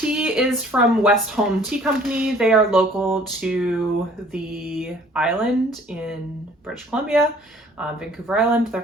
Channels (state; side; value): normal; both; correlation 0.55